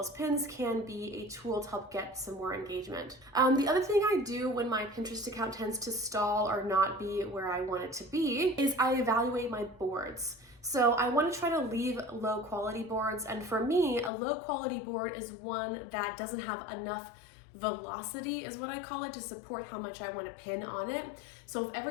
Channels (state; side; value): drops out; right; at 14.1 s